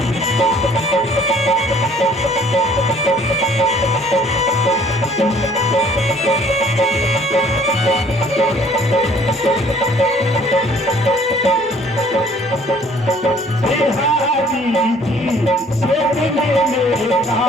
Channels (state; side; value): normal; both; correlation 0.56